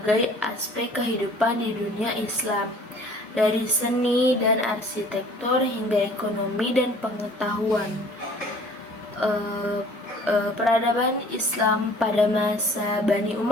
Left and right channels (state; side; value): normal; both; correlation 0.51